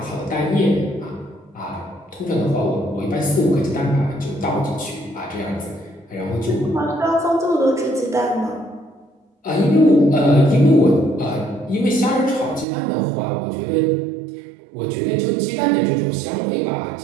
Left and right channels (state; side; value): drops out; left; at 12.7 s